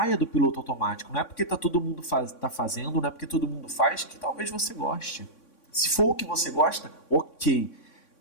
do piloto automático. Não é porque todo mundo tá fazendo, não é porque todo mundo faz, que talvez você goste. Se for o que você gosta, ok.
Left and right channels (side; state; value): right; late; 3.6 ms